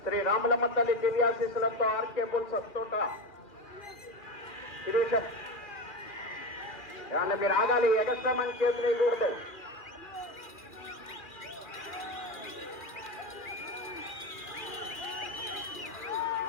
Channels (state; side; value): late; right; 2.5 ms